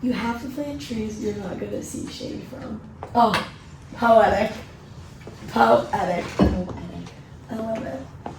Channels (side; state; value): both; identical; correlation 1.00